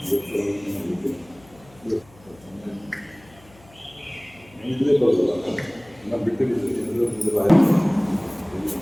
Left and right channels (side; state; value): left; noise; hum, 26 dB below the sound